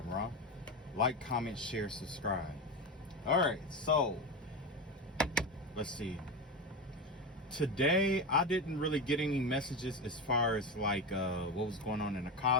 Ra. Like, comment, share, subscribe. All right, so let's see. Today I didn't really get any messages as far as like what was going on in the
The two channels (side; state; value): both; normal; correlation 0.19